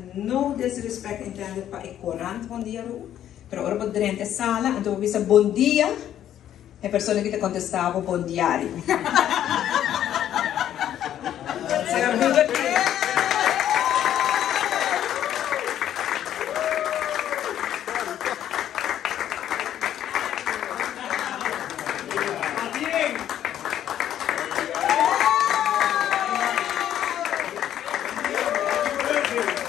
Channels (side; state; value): right; quieter; 11.0 dB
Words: não desrespeito entende para o corante bom dia, mas ora podrenta sala, então visa bom dia, a pessoa que te contestava bom diário.